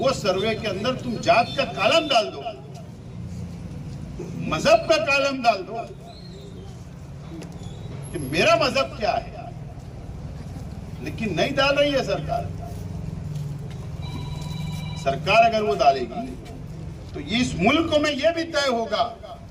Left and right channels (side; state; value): both; identical; correlation 1.00